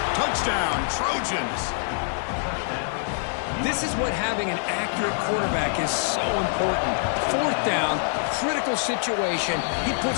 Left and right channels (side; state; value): right; silent; 62 dB below the other